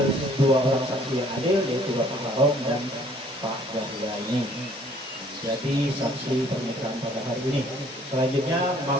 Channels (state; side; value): normal; both; correlation 0.59